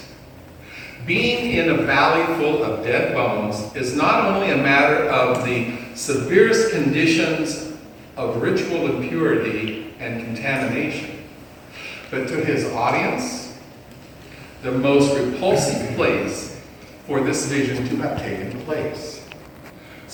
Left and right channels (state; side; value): identical; both; correlation 1.00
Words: being in a valley full of dead bones is not only a matter of the severest conditions of ritual impurity and contamination, but to his audience, the most repulsive place for this vision to have taken place.